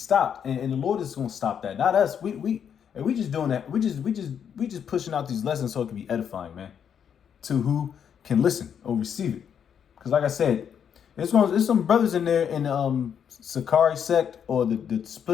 And the Lord is going to stop that. Not us. We just doing that. We just pushing out these lessons so it can be edifying, man, to who can listen or receive it. Because like I said, there's some brothers in there in Sakari sect or the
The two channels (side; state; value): right; quieter; 8.1 dB